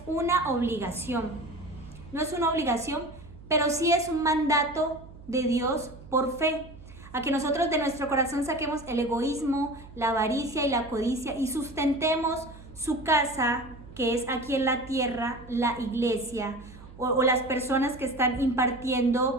una obligación. No es una obligación, pero sí es un mandato de Dios por fe, a que nosotros de nuestro corazón saquemos el egoísmo, la avaricia y la codicia y sustentemos su casa, que es aquí en la tierra, la iglesia, o las personas que están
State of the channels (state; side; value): noise; right; hum, 18 dB below the sound